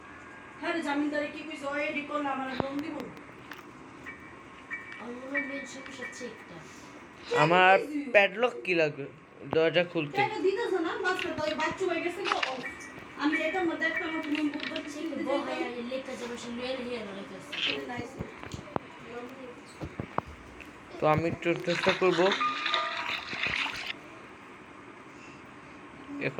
আমার প্যাডলক কি লাগবে দরজা খুলতে? তো আমি একটু চেষ্টা করবো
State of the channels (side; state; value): both; identical; correlation 1.00